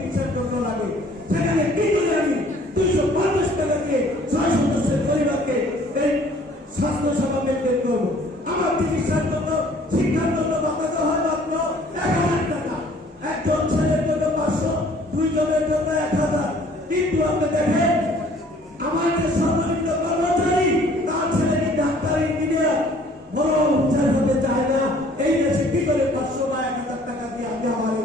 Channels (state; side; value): normal; both; correlation 0.56